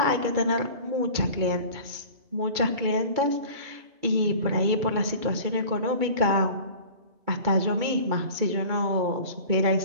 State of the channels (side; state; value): left; late; 2.3 ms